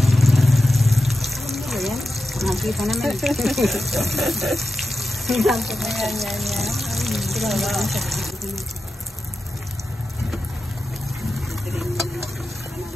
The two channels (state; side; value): normal; both; correlation 0.91